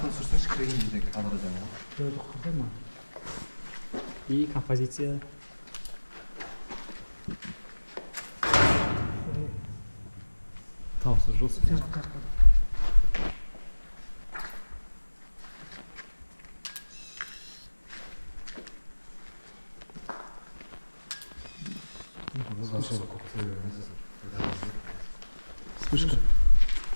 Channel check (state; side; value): inverted; both; correlation -1.00